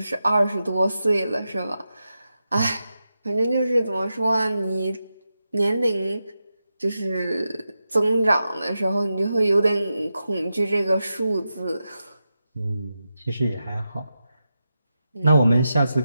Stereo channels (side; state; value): both; inverted; correlation -0.90